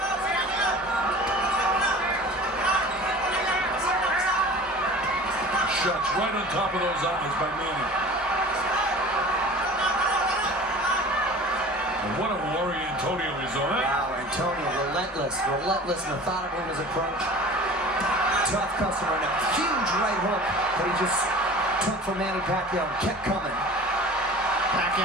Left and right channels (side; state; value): both; normal; correlation 0.41